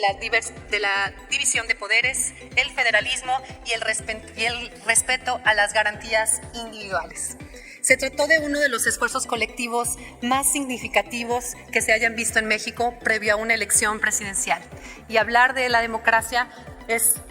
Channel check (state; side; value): identical; both; correlation 1.00